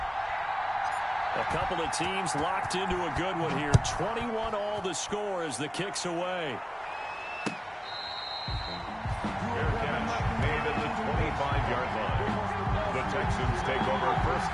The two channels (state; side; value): identical; both; correlation 1.00